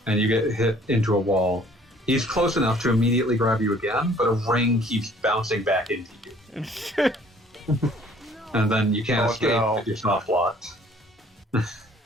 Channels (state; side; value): normal; both; correlation 0.56